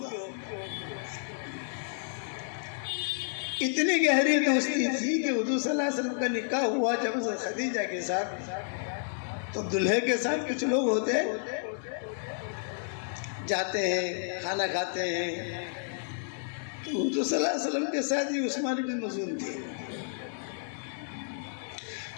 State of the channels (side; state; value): right; silent; digital silence